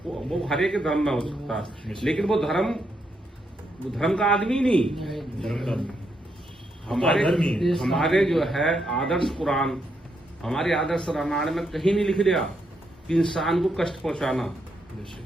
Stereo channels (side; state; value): both; normal; correlation 0.79